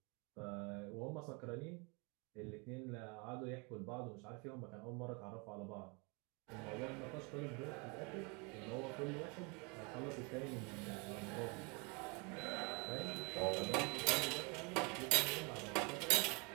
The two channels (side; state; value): left; quieter; 31.0 dB